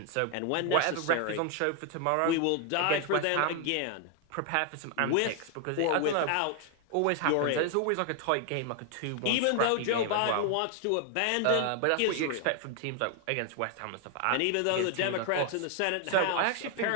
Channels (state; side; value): different; both; correlation 0.00